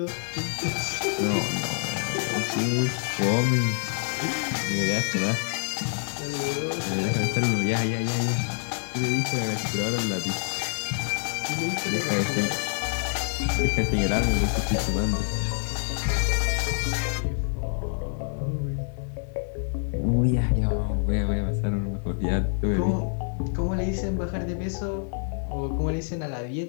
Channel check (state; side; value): silent; right; 60 dB below the other